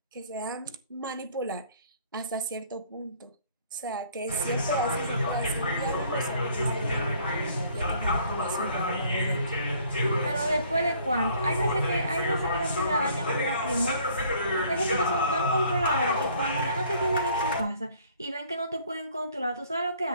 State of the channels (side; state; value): both; inverted; correlation -0.59